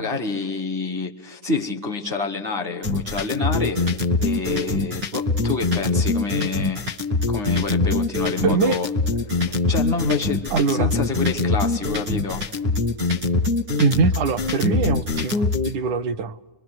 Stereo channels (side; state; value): left; late; 9.8 ms